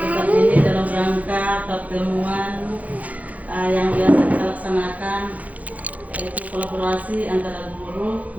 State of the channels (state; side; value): late; left; 0.074 ms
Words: ini dalam rangka pertemuan yang biasa kita laksanakan, yaitu kolaborasi antara guru